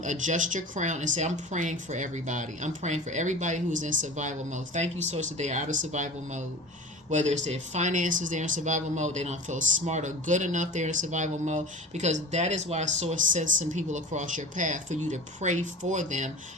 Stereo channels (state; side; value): normal; both; correlation 0.36